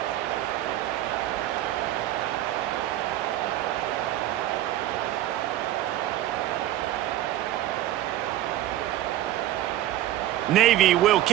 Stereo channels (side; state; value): left; quieter; 13.6 dB